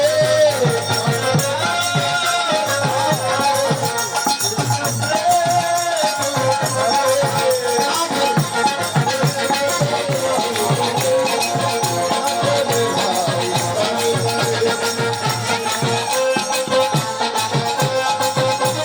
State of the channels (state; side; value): identical; both; correlation 1.00